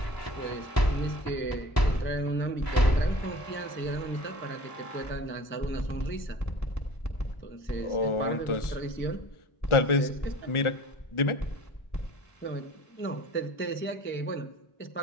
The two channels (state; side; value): late; right; 1.4 ms